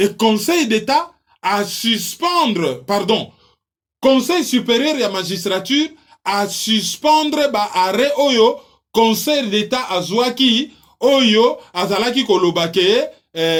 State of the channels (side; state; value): both; identical; correlation 1.00